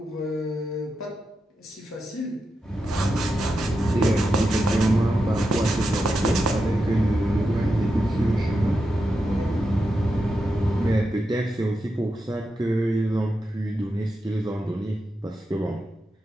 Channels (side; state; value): both; normal; correlation 0.88